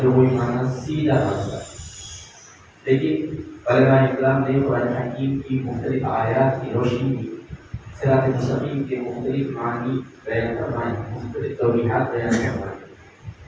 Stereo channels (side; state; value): both; identical; correlation 1.00